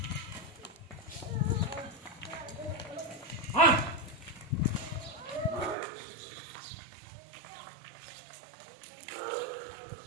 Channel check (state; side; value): drops out; left; at 5.8 s